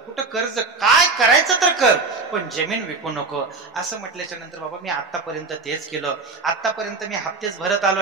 कुठं कर्ज काय करायचं तर कर, पण जमीन विकू नको. असं म्हटल्याच्या नंतर बाबा मी आतापर्यंत तेच केलं, आतापर्यंत मी हप्तेच भरत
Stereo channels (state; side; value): quieter; left; 4.0 dB